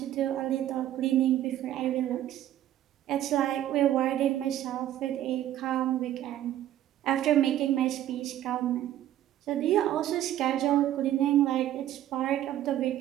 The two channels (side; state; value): left; quieter; 12.5 dB